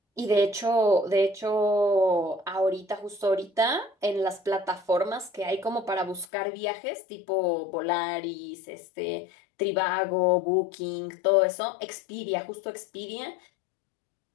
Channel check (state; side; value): drops out; right; at 6.2 s